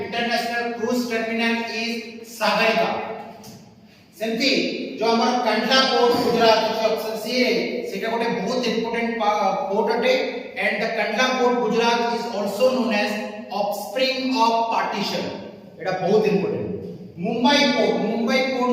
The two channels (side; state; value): both; identical; correlation 1.00